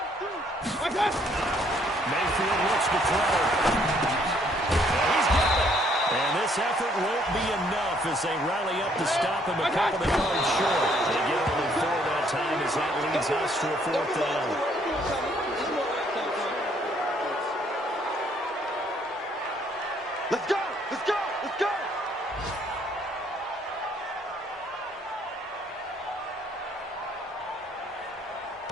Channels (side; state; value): both; normal; correlation 0.66